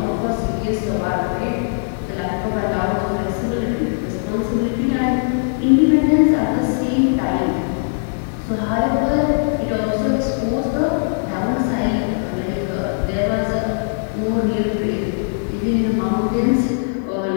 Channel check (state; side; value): silent; right; 62 dB below the other